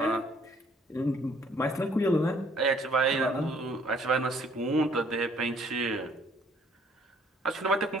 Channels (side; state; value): both; normal; correlation 0.61